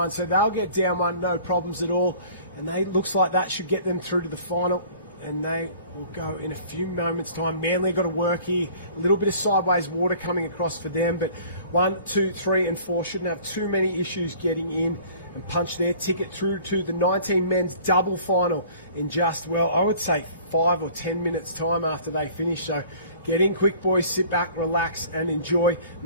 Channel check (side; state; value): both; inverted; correlation -0.49